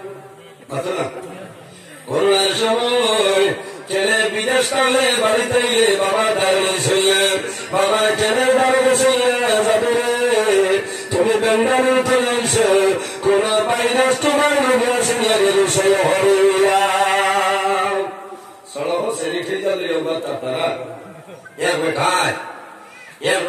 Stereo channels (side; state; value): both; identical; correlation 1.00